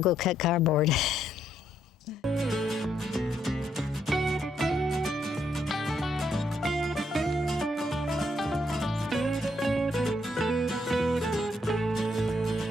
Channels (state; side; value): normal; both; correlation 0.75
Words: go cut cardboard.